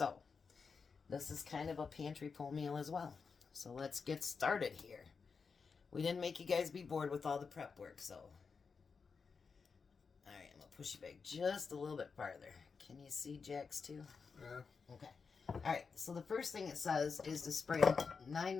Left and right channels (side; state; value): right; quieter; 5.3 dB